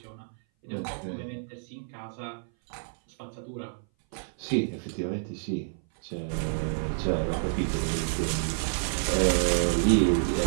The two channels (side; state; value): left; silent; 57 dB below the other